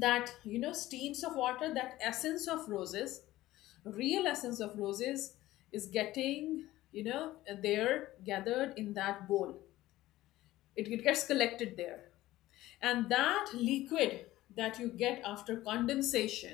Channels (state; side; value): quieter; right; 16.2 dB